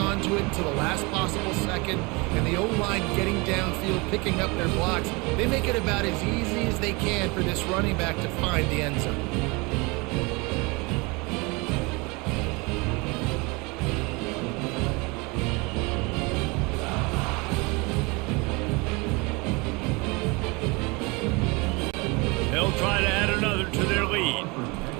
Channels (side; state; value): left; quieter; 26.9 dB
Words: to it until the last possible second, and the O-line getting downfield, picking up their blocks. They make it about as easy as they can for this running back to find the end zone. They'll try to add another to their lead.